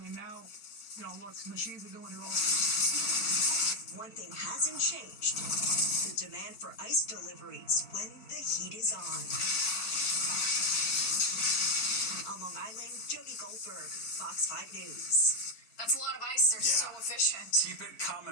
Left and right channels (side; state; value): right; late; 4.4 ms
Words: And now, look, machines are doing it all. one thing hasn't changed: the demand for ice deliveries when the heat is on. On Long Island, Jody Goldberg, Fox 5 News. That's a lot of ice. They're so efficient. Keep it